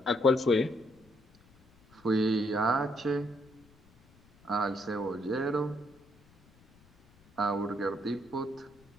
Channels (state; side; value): noise; left; rumble, 28 dB below the sound